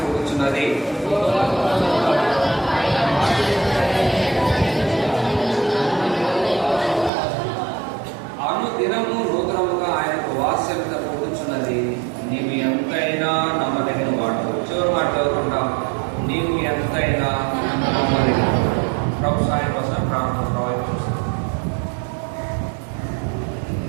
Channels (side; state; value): left; drops out; at 7.1 s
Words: అనుదినము నూతనముగా ఆయనకు వాత్సల్యత పుడుతున్నది. నీవు ఎంతైనా నమ్మదగిన వాడు. చివరి మాట చదువుకుంటాం. నీవు ఎంతైనా నమ్మదగిన. ప్రభు సాయం కోసం ప్రార్థన ప్రవహించాం.